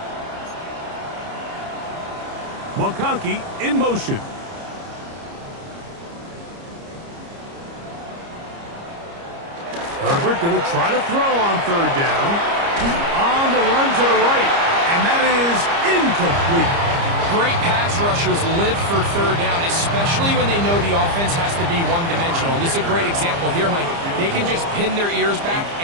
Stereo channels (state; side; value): late; left; 30 ms